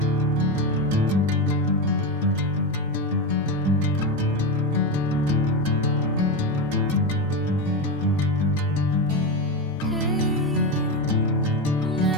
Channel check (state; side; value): normal; both; correlation 0.15